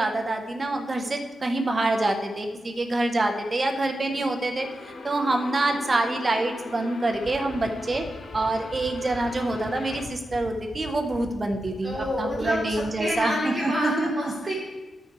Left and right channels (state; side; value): normal; both; correlation 0.90